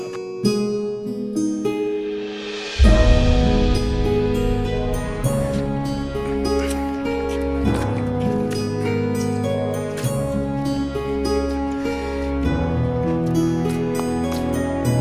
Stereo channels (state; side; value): identical; both; correlation 1.00